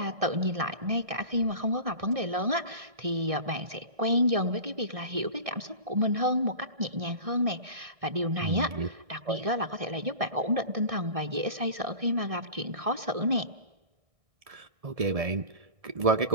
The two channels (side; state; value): left; late; 1.6 ms